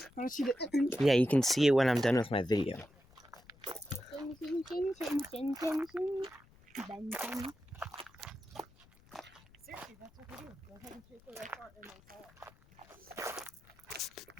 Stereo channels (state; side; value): noise; left; rumble, 27 dB below the sound